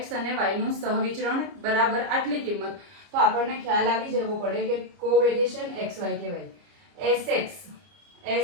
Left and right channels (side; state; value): left; late; 29 ms